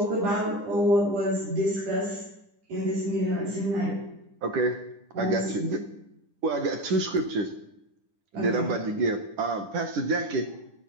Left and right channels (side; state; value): left; late; 9.9 ms